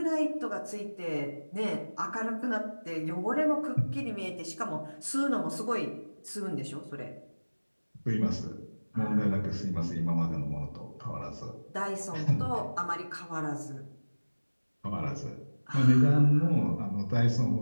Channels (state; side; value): inverted; both; correlation -1.00